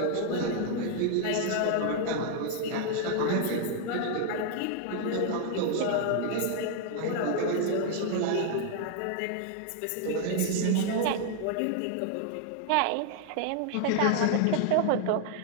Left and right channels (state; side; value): different; both; correlation 0.00